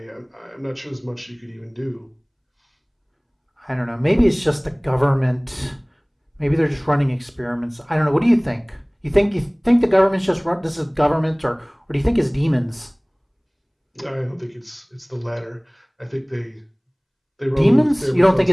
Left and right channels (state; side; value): identical; both; correlation 1.00